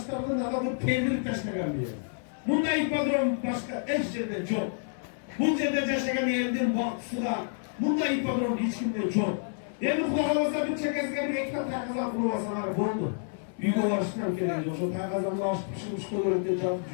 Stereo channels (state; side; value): silent; right; 59 dB below the other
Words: alıp peynir taşlayan bir yer. Bunda ipodrom başka eş yerde çok. Bu yerde yaşayan yerden baksıda bunda ipodrom hiç kimde çok. Yani kulağımızda bir çekesine bir ekran takızan kulağımızda buldu. Büyük olarışından geldi. O takızanla açıp pişirmiş koyuyordu canlı